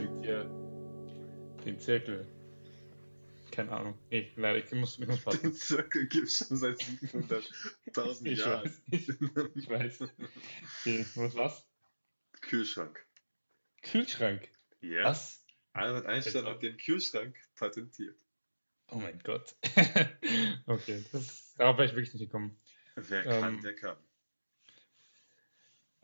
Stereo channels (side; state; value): both; inverted; correlation -1.00